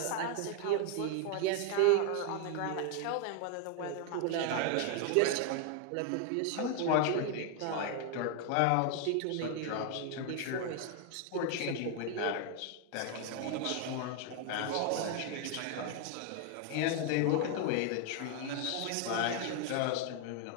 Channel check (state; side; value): different; both; correlation 0.01